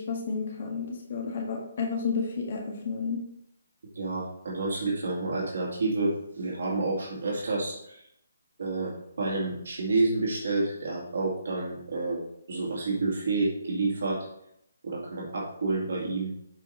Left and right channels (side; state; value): both; inverted; correlation -0.70